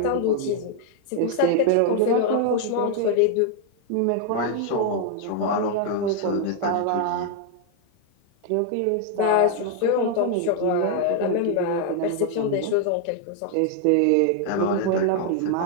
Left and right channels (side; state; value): both; different; correlation 0.00